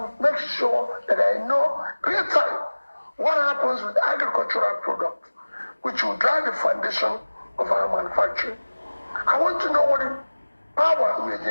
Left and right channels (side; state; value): both; inverted; correlation -1.00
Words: make sure that I know real time what happens with agricultural products, which will drive the foundation of our manufacturing. I want to know what the power we are